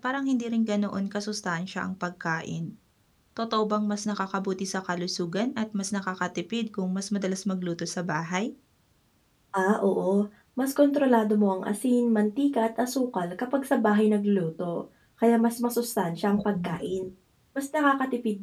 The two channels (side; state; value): both; identical; correlation 1.00